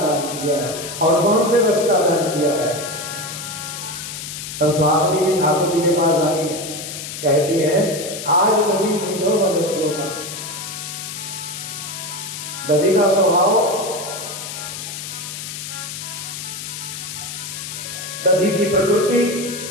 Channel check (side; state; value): left; noise; hiss, 8 dB below the sound